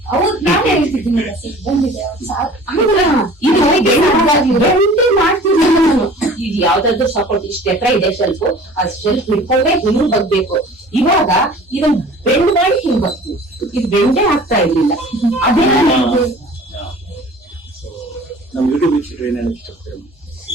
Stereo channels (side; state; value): both; normal; correlation 0.45